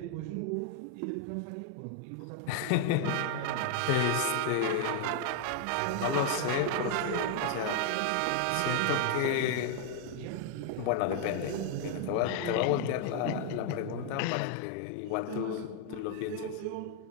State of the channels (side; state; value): both; different; correlation 0.00